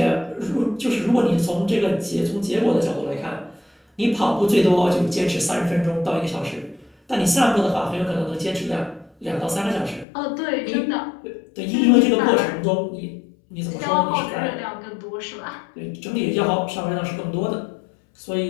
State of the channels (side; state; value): right; drops out; at 10.1 s